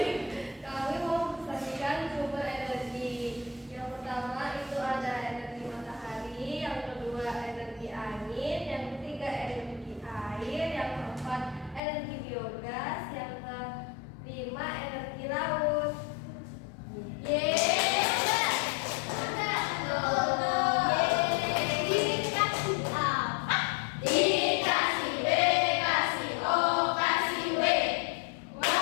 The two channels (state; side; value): drops out; right; at 11.8 s